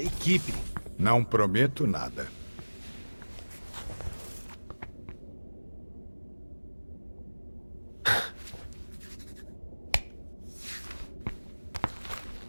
equipe. Não prometo nada.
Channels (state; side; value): inverted; both; correlation -1.00